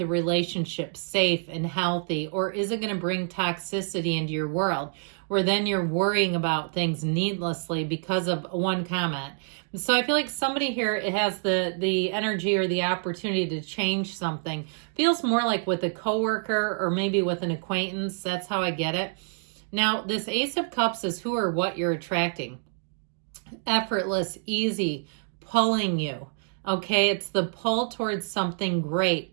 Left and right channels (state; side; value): silent; left; 60 dB below the other